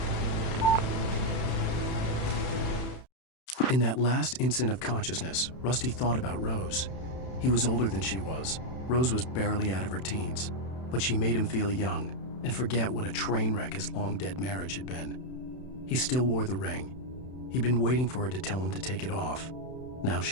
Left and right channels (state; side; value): late; right; 31 ms